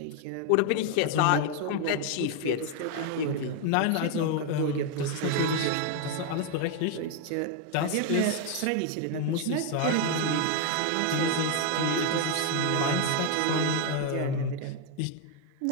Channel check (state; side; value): different; both; correlation 0.01